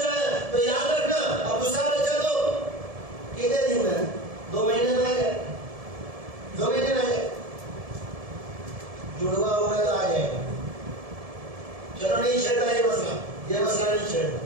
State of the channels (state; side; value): late; left; 1.7 ms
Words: ہے، تو یاد رکھنا اب دوسرا بچہ تو کتنے دن میں 2 مہینے میں آ جائے، 2 مہینے میں آ جائے، جڑوا ہوگا تو آ جائے گا۔ چلو نہیں چھیڑتا یہ مسئلہ نہیں چھیڑتا،